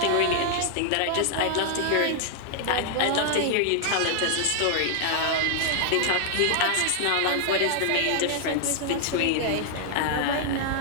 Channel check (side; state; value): both; different; correlation 0.00